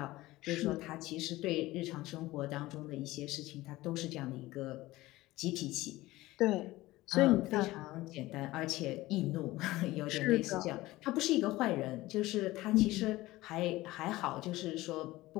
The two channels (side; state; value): right; quieter; 18.2 dB